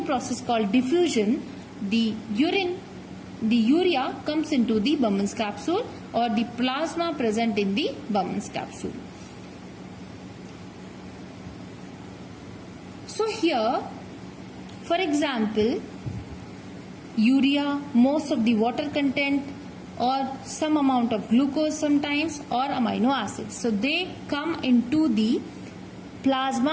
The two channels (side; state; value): both; identical; correlation 1.00